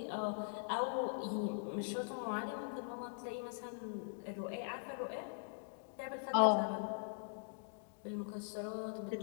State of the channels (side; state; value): right; silent; digital silence